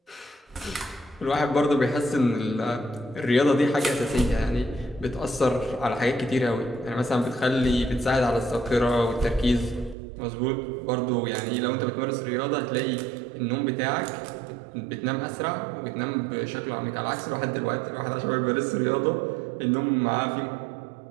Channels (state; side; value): drops out; left; at 10.0 s